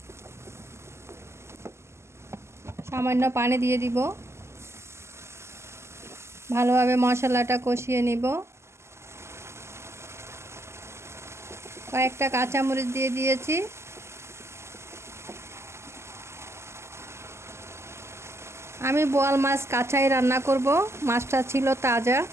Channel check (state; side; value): late; left; 0.13 ms